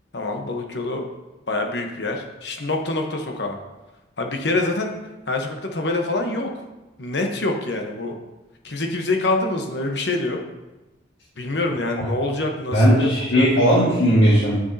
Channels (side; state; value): both; normal; correlation 0.47